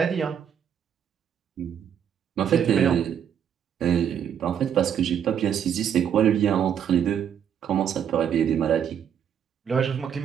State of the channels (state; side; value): quieter; left; 8.7 dB